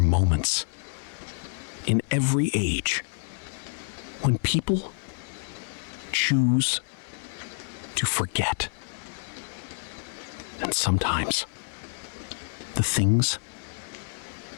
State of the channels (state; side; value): silent; right; 59 dB below the other